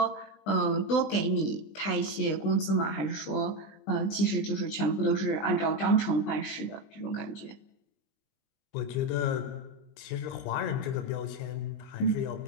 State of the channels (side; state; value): right; late; 20 ms